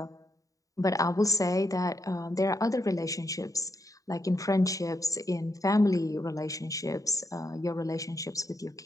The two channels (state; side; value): late; right; 0.16 ms